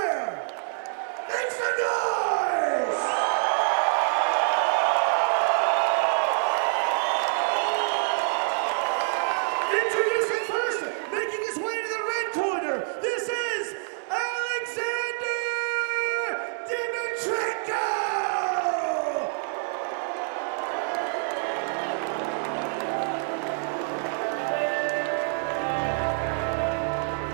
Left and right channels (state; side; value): silent; left; 61 dB below the other